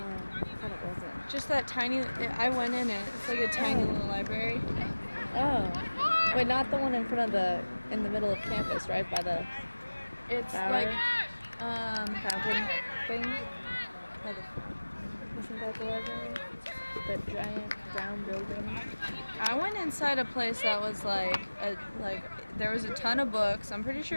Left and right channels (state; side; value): inverted; both; correlation -1.00